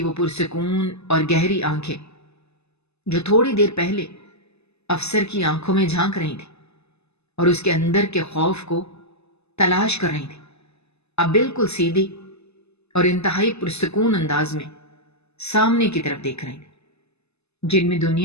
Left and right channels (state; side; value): late; right; 0.80 ms